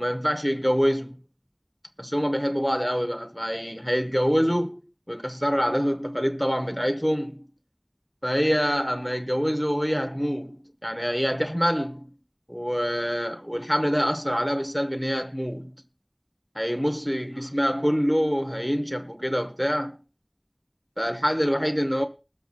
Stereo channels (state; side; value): identical; both; correlation 1.00